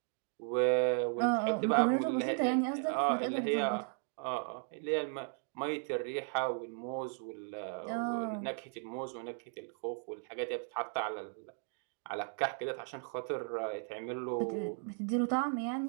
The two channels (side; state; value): left; silent; 54 dB below the other